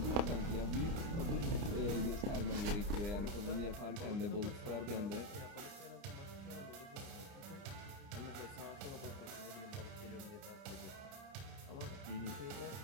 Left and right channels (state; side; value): late; left; 30 ms